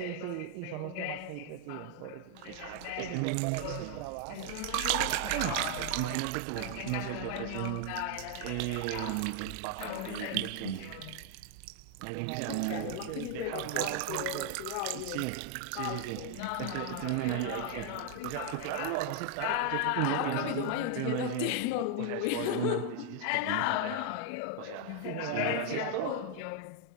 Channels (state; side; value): different; both; correlation 0.00